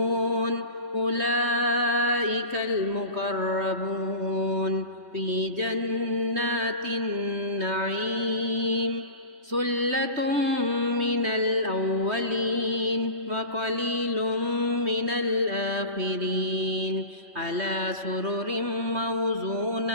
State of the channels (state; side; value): late; left; 3.2 ms